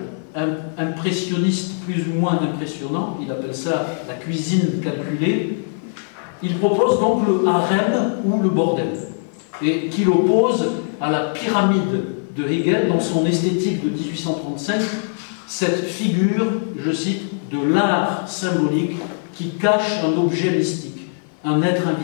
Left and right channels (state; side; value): silent; right; 57 dB below the other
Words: impressionniste plus ou moins impressionnant, il appelle ça la cuisine calculée, il propose donc le harem ou le bordel, et qu'il oppose à la pyramide de Hegel dans son esthétique de 1835, cette figure, je cite, de l'art symbolique qui cache un objet mystique, un être